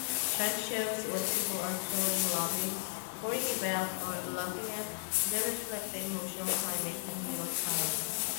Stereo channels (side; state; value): right; silent; digital silence